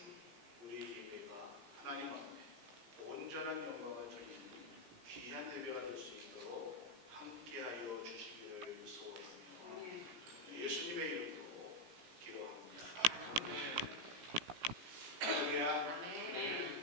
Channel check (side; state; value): left; late; 17 ms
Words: 우리 예배가 하나님 앞에 온전한 영광을 드리는 귀한 예배가 될 수 있도록 함께하여 주시기를 소원하며 예수님의 이름으로 기도합니다. 할렐루야.